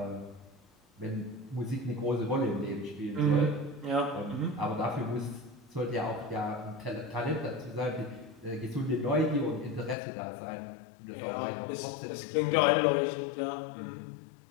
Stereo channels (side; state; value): right; drops out; at 10.0 s